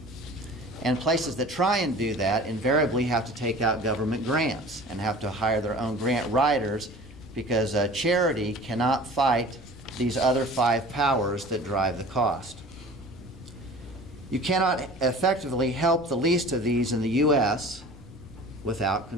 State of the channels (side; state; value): left; noise; rumble, 21 dB below the sound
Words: And places that try and do that invariably have to take out government grants and have to hire their own grant writers, because charity cannot fight these other 5 powers that drive the cost. You cannot effectively help the least of these in the U.S. without